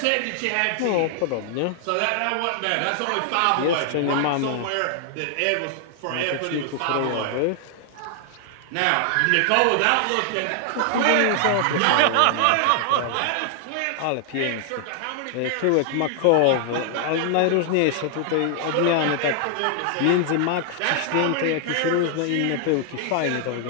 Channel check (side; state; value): both; different; correlation 0.00